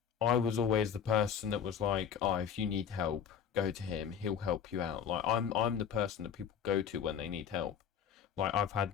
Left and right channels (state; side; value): quieter; right; 7.8 dB